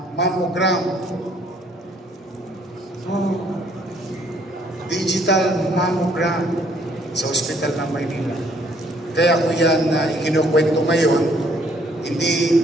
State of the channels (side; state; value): both; normal; correlation 0.64